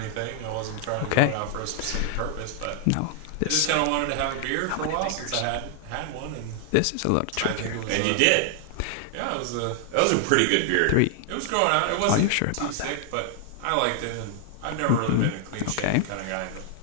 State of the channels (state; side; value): different; both; correlation 0.00